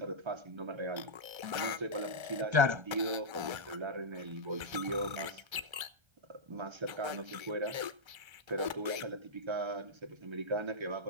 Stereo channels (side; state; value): left; late; 1.3 ms